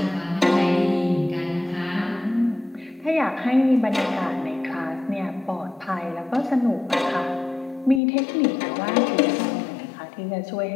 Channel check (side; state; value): right; drops out; at 8.0 s